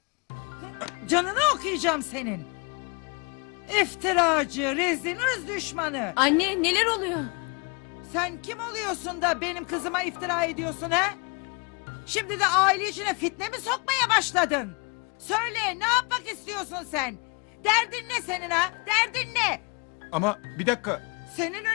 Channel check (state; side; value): quieter; right; 32.2 dB